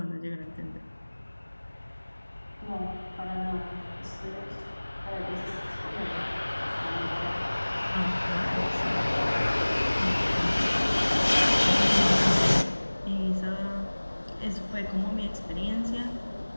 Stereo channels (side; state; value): both; inverted; correlation -1.00